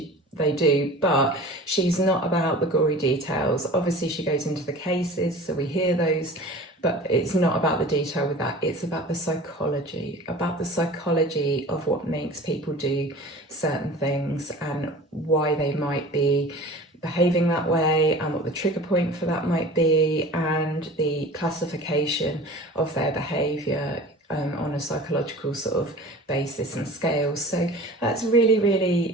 they do, but she's not about the gory details. Obviously she goes into the cases, so we hear those, but it's not about the detail with that. It's about the psychology of what makes people do certain things and why they might be behaving that way, and what the trigger point for that might be, and the classification of their behaviour on a psychological sort of basis and scale. So that's really,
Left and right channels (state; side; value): normal; both; correlation 0.40